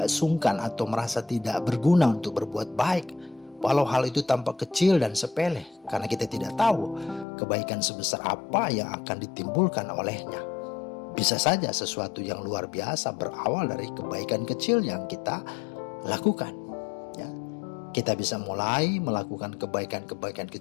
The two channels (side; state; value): right; drops out; at 7.2 s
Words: sungkan atau merasa tidak berguna untuk berbuat baik, walau hal itu tampak kecil dan sepele, karena kita tidak tahu kebaikan sebesar apa yang akan ditimbulkan olehnya. Bisa saja sesuatu yang luar biasa berawal dari kebaikan kecil yang kita lakukan. Ya, kita bisa mulai melakukan kebaikan-kebaikan